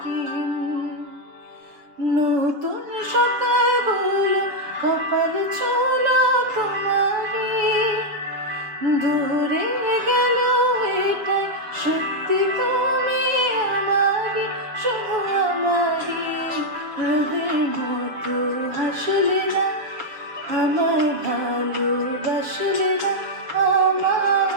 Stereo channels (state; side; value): late; left; 7.1 ms